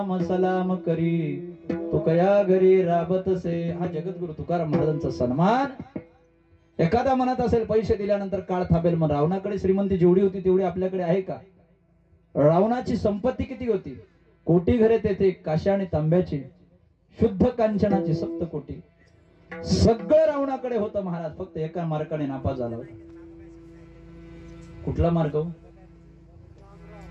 सलाम करी तुकया घरी राबतसे. हा जगद्गुरु तुकाराम महाराजांचा सन्मान. एखादा म्हणत असेल पैसे दिल्यानंतर काळ थांबेल, मग रावणाकडे श्रीमंती जेवढी होती तेवढी आपल्याकडे आहे का? रावणाची संपत्ती किती होती? कोटी घरे तेथे काश्या आणि तांब्याची, शुद्ध कांचनाची 7 कोटी. सगळं रावणाकडे होतं महाराज. फक्त एका मार्गाने नापास झाला होता. कुठला मार्ग?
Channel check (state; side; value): identical; both; correlation 1.00